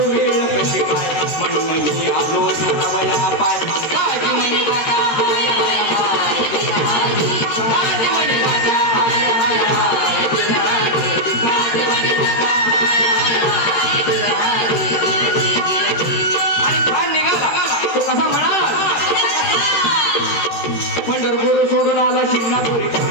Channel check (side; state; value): right; late; 13 ms